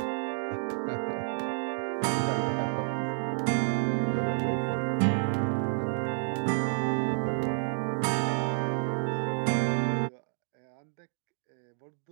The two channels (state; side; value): silent; left; digital silence